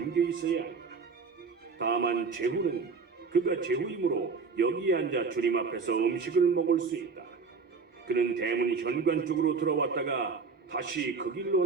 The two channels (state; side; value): quieter; left; 4.9 dB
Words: 있어야 한다. 다만 제후는 그가 제후이므로 여기에 앉아 주님 앞에서 음식을 먹을 수 있다. 그는 대문 현관 쪽으로 들어왔다가 다시 그 길로